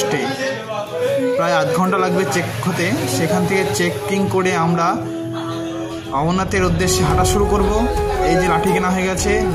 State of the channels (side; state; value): both; identical; correlation 1.00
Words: প্রায় আধ ঘন্টা লাগবে চেক হতে। সেখান থেকে চেকিং করে আমরা অমরনাথের উদ্দেশ্যে হাঁটা শুরু করব। এই যে লাঠি কেনা হয়ে গেছে,